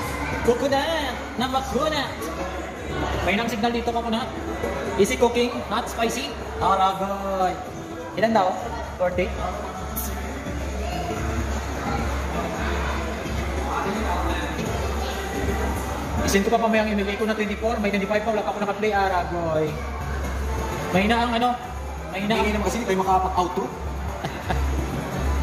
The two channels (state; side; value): identical; both; correlation 1.00